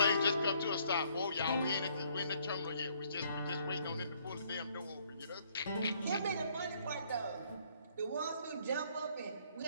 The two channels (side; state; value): both; inverted; correlation -0.65